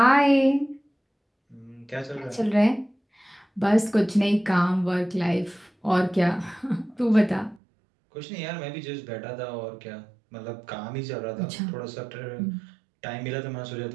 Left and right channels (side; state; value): left; drops out; at 7.6 s